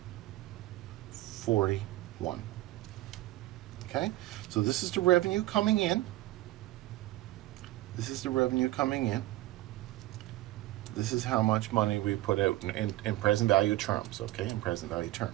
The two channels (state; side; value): quieter; left; 17.1 dB